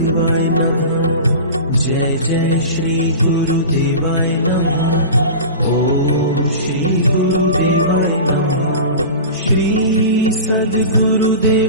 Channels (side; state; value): both; inverted; correlation -0.32